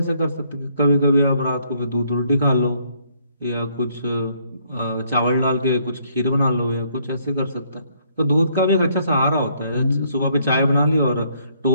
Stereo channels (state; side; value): inverted; both; correlation -0.68